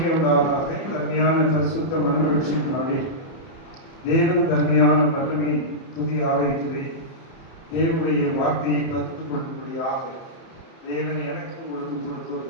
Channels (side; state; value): right; late; 30 ms